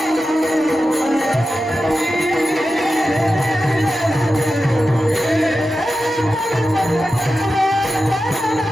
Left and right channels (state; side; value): normal; both; correlation 0.92